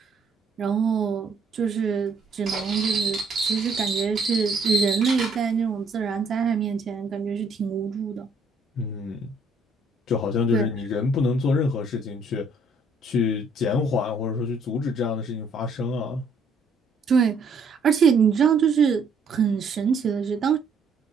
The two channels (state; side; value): quieter; left; 3.2 dB